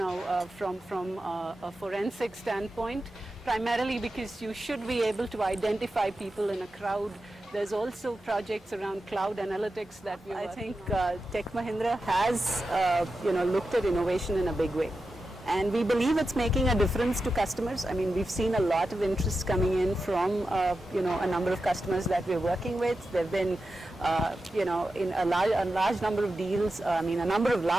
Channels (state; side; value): normal; both; correlation 0.91